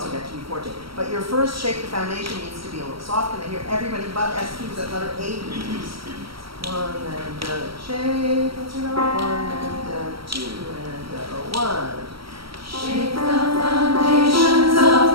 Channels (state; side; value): late; left; 0.75 ms